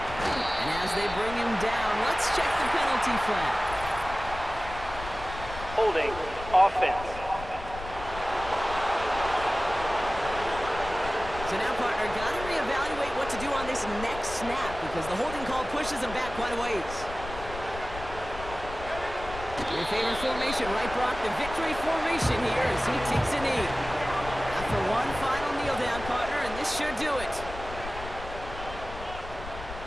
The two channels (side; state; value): left; noise; rumble, 11 dB below the sound